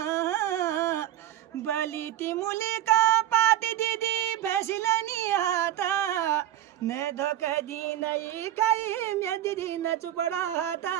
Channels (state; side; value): quieter; left; 12.8 dB